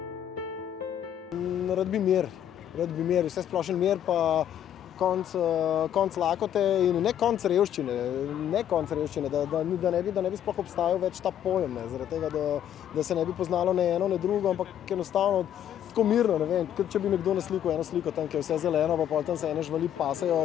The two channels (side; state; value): right; quieter; 10.3 dB